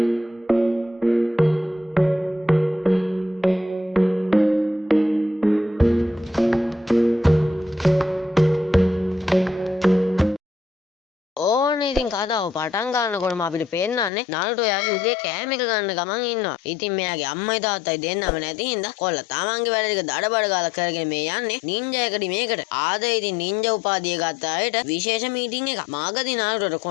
ඉතින් කතාව පටන් ගන්නකොටම අපිට පේන්නන්නේ නාරුටෝ යාගේ උගේ කෑම එක ගන්න ගමන් ඉන්නවා. ඉතින් මෙයාගේ අම්මයි තාත්තයි දෙන්නම නැති හින්දා කොල්ල තමන්ගේ වැඩ ටික දඩබඩ ගාලා කරගෙන මේ යන්නේ නින්ජා එකඩමියකට. ආද ඉතින් නින්ජා උපාධිය ගත්ත අයට විශේෂ මීටින් එකක්. මාගදී නාරුටෝට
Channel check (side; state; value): right; drops out; at 14.1 s